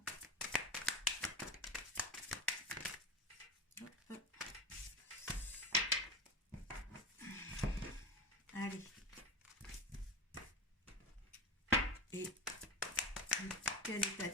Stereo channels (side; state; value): both; normal; correlation 0.25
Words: Allez. Et quel état